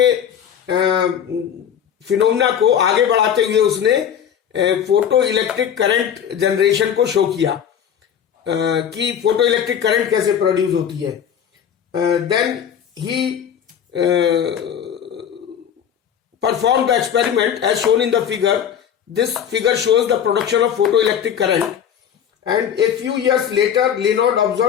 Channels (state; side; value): quieter; right; 8.8 dB